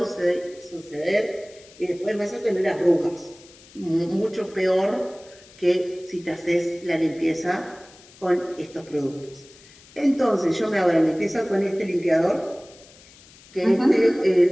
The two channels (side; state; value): left; noise; hiss, 24 dB below the sound